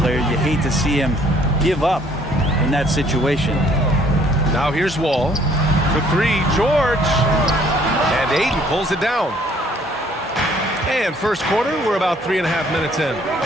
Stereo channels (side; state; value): both; normal; correlation 0.61